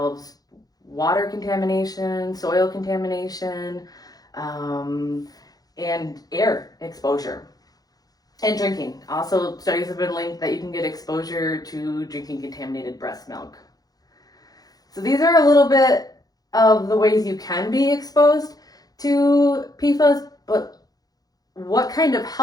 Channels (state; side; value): late; right; 0.18 ms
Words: water contamination, soil contamination, and air exposure. And drinking. Also, studies have been linked that you can get exposure to drinking contaminated breast milk. So these are a little bit of the ways you can be exposed to PFAS, but what kind of